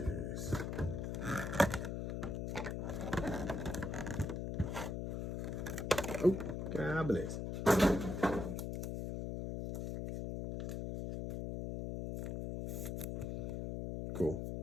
Oh, God bless. Cool.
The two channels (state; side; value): noise; left; hum, 3 dB below the sound